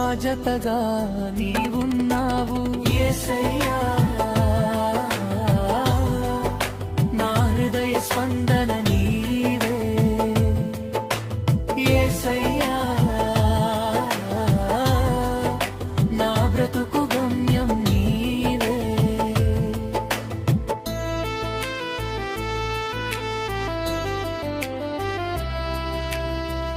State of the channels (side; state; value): both; identical; correlation 1.00